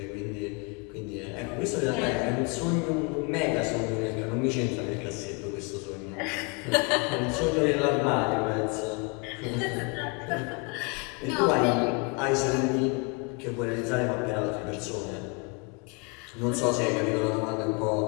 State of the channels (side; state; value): right; quieter; 32.4 dB